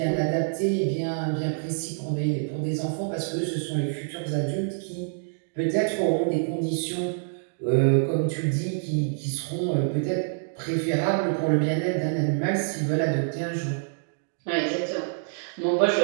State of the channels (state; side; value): silent; left; digital silence